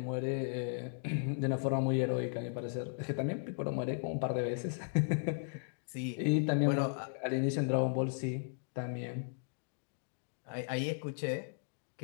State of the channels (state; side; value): silent; right; digital silence